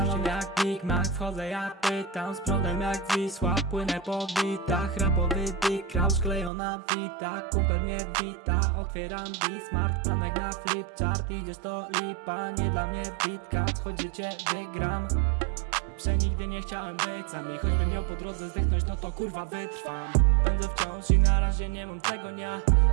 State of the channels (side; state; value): left; drops out; at 6.5 s